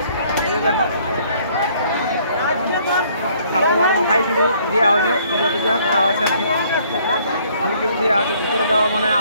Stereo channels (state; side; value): inverted; both; correlation -0.62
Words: এই যে দেখো খাবার মাথায় কিন্তু দেওয়া হয়েছে, পূজা টুজা করা হয়েছে আর কি, ফুল টুল দেওয়া আছে। ভিতরে যাওয়া মানে